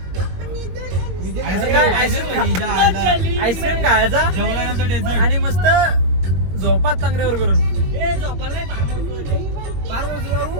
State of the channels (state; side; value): late; left; 21 ms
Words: आईस्क्रीम खायचा जेवल्यानंतर आणि मस्त झोपात चांगल्यावर करून झोपायला नाही फार